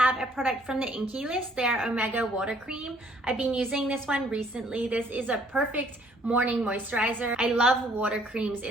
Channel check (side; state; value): both; normal; correlation 0.62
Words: a product from the Inkey List, their Omega Water Cream. I've been using this one recently. This is a perfect morning moisturizer. I love water creams